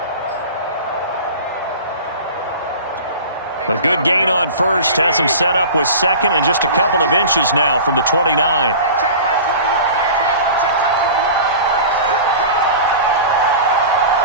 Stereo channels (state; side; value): inverted; both; correlation -0.36